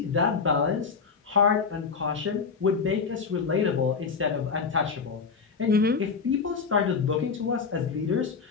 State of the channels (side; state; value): right; quieter; 5.4 dB